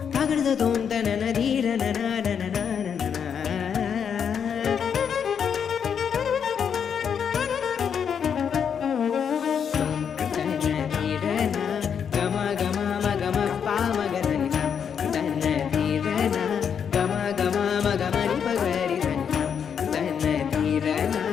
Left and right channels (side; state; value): right; quieter; 7.5 dB